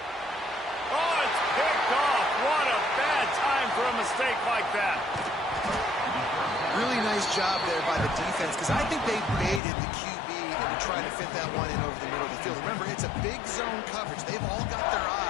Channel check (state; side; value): drops out; right; at 9.6 s